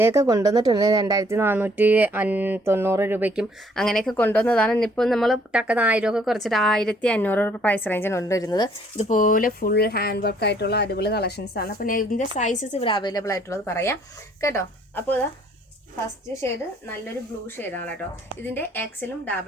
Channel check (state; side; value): normal; both; correlation 0.62